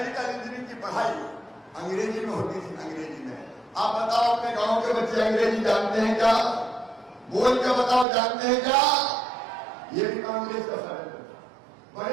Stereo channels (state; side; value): drops out; left; at 8.1 s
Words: इंजीनियरिंग की पढ़ाई अंग्रेजी में होती थी। अंग्रेजी में आप बताओ, अपने गांव के बच्चे अंग्रेजी जानते हैं क्या? बोल के बताओ, जानते हैं क्या? ये भी कांग्रेस का षड्यंत्र था।